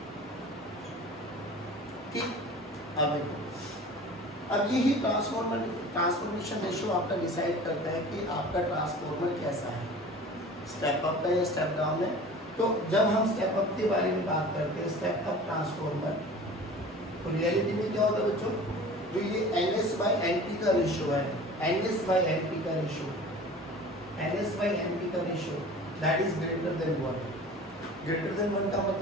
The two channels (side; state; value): both; normal; correlation 0.41